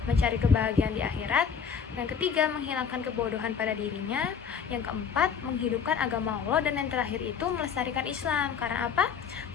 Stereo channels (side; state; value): right; quieter; 6.9 dB